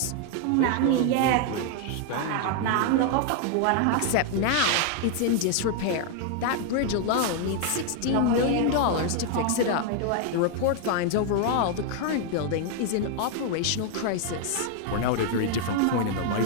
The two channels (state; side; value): different; both; correlation 0.00